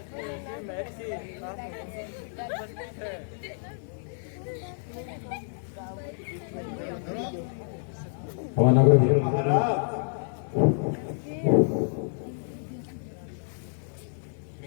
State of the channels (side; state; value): right; silent; digital silence